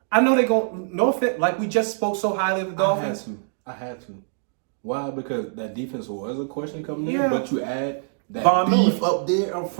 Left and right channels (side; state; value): left; silent; digital silence